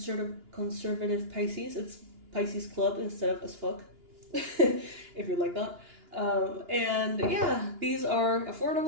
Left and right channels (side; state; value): left; late; 2.9 ms